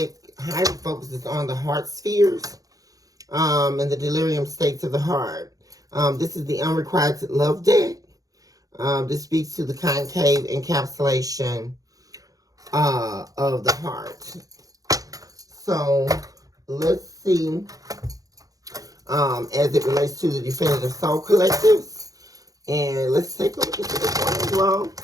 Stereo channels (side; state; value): left; late; 0.17 ms